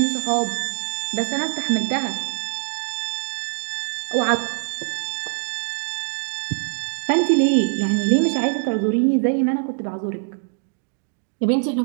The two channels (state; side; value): silent; left; digital silence